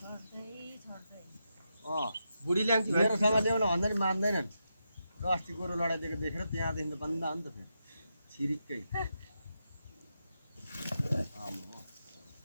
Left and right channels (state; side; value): inverted; both; correlation -0.86